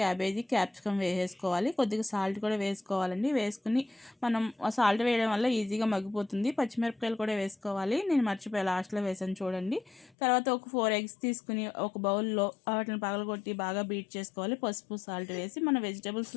క్యాప్సికమ్ వేసేసుకోవాలి. కొద్దిగా సాల్ట్ కూడా వేసుకోవాలండి. వేసుకుని మనం సాల్ట్ వేయడం వల్ల ఈజీగా మగ్గిపోతుంది. పచ్చిమిరపకాయలు కూడా వేసుకోవాలి. నేను మర్చిపోయి లాస్ట్లో వేసాను చూడండి. తర్వాత ఒక 4 ఎగ్స్ తీసుకుని ఒక బౌల్లో వాటిని పగలగొట్టి బాగా బీట్ చేసుకోవాలి. పసుపు, సాల్ట్ వేసి మన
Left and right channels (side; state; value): right; drops out; at 10.1 s